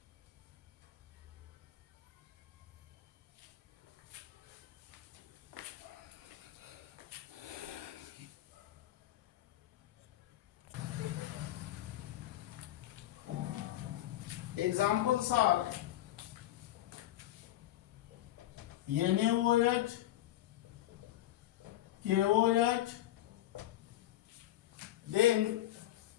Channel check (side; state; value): right; quieter; 14.2 dB